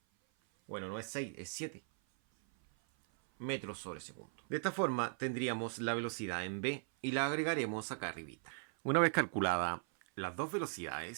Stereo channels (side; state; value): left; silent; 52 dB below the other